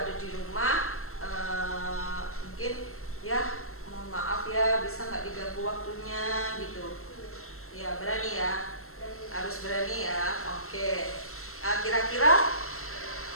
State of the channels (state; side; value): late; right; 0.62 ms